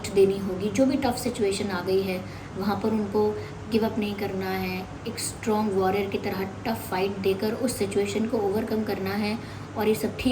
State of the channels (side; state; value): both; identical; correlation 1.00